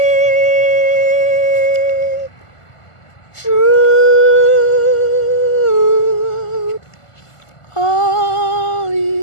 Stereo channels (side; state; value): right; late; 1.5 ms